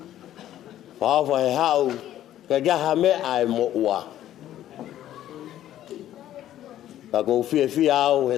Whaofa he hau ke gaha me ai mo ua. Ka kou fie au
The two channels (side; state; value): right; quieter; 12.4 dB